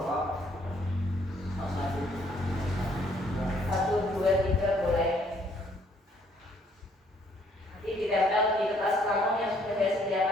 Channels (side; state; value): both; normal; correlation 0.65